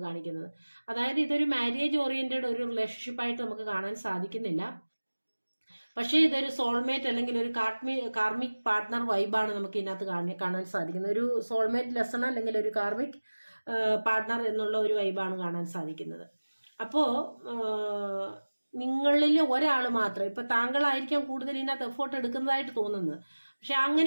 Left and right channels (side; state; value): both; inverted; correlation -1.00